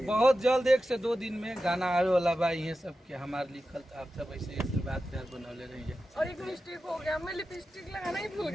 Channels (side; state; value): both; normal; correlation 0.92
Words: बहुत जल्द 1 से 2 दिन में गाना आवे वाला बा। ये सब के हमारे लिखल तो आप सब ऐसे आशीर्वाद प्यार बनौले रहेंगे। और एक मिस्टेक हो गया, मैं लिपस्टिक लगाना ही भूल